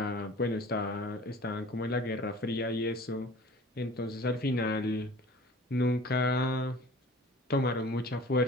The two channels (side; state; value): both; normal; correlation 0.44